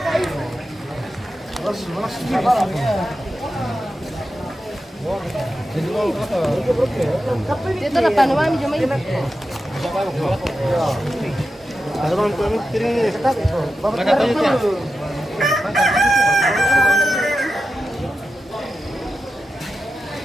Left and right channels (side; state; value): both; normal; correlation 0.90